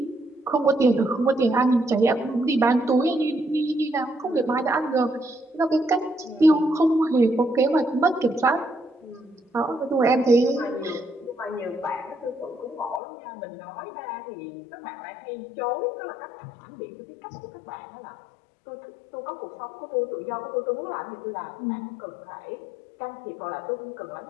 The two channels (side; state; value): right; drops out; at 13.0 s